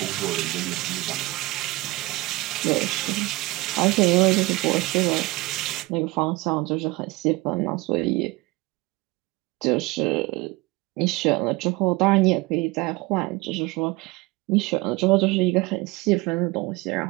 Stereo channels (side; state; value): left; quieter; 21.8 dB